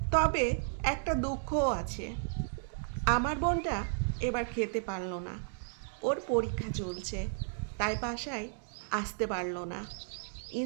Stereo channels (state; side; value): silent; left; digital silence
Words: তবে একটা দুঃখও আছে, আমার বোনটা এবার খেতে পারলো না। ওর পরীক্ষা চলছে, তাই বাসায় আসতে পারলো না।